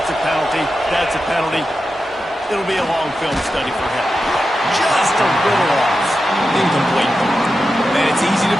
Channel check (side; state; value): both; normal; correlation 0.90